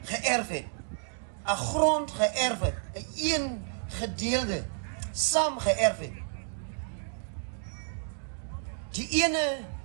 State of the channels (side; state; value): left; silent; digital silence